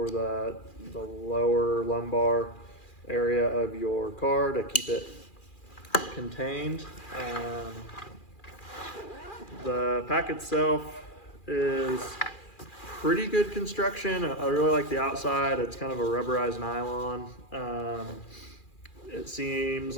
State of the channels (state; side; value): late; right; 2.4 ms